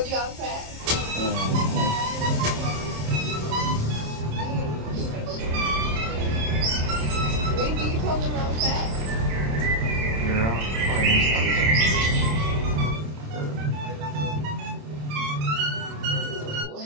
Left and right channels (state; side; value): late; left; 27 ms